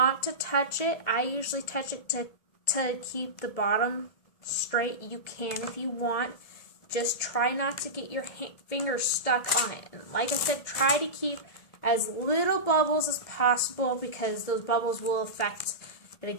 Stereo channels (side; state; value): right; late; 1.7 ms